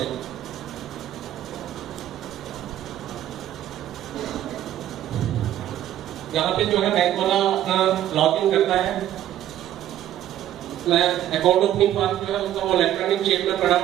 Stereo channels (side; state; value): left; quieter; 12.2 dB